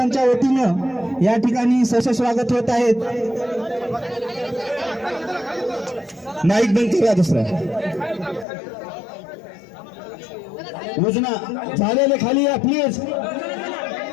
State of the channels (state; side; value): drops out; right; at 8.5 s